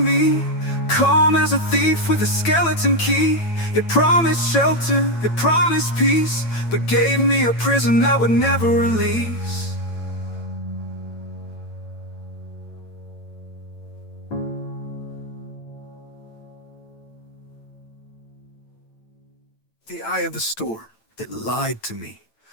Calm as a thief with a skeleton key. It promised shelter, it promised peace, but gave me a prison that would never release. The eye of the storm, it lied to me.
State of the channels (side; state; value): right; late; 9.0 ms